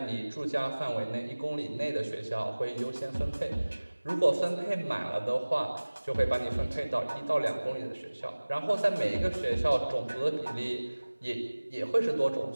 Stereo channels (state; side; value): inverted; both; correlation -1.00